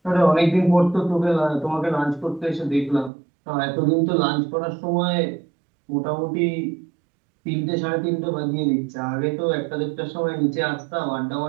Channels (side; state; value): left; drops out; at 3.1 s